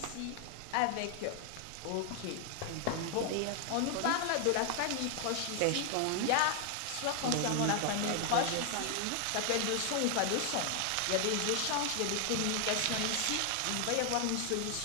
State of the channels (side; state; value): both; different; correlation 0.00